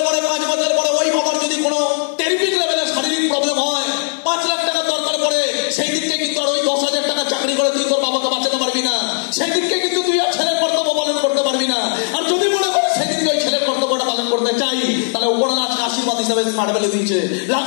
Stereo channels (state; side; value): silent; right; digital silence